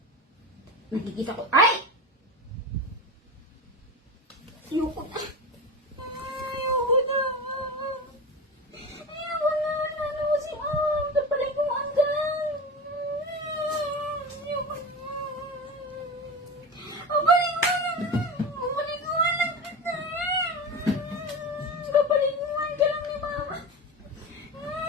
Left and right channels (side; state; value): both; normal; correlation 0.26